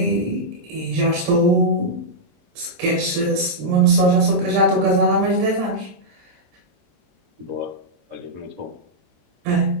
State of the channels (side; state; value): left; late; 20 ms